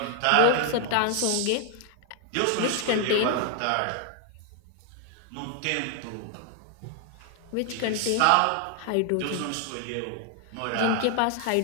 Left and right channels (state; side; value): different; both; correlation 0.00